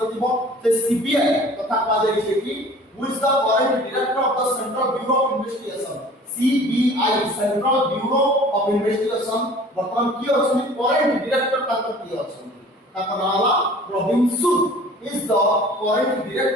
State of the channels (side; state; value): both; normal; correlation 0.47